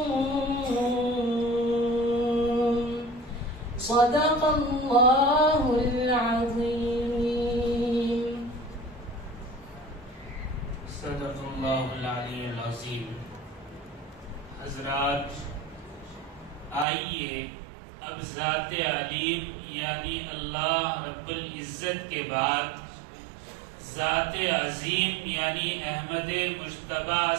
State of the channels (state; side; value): drops out; left; at 16.9 s